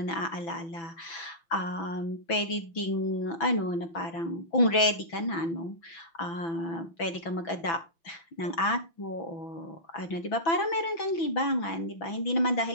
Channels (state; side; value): late; right; 6.0 ms